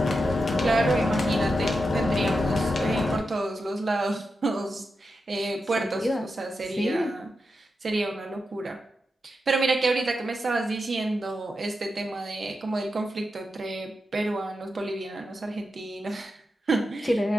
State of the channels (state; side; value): normal; both; correlation 0.88